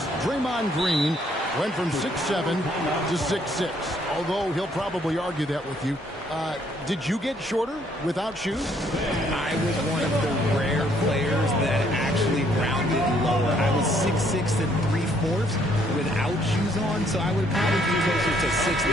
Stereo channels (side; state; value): both; normal; correlation 0.67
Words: Draymond Green went from 6'7" to 6'6", although he'll probably argue that with you. Did you get shorter without shoes? I was one of the rare players that actually rounded lower. I was 6'6" and 3/4 without shoes on, so I would probably be closer to